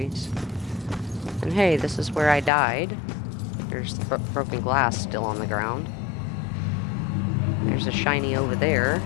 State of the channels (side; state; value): right; drops out; at 2.5 s